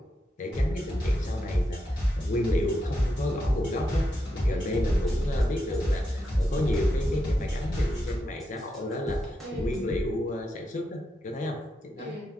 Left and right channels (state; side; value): normal; both; correlation 0.85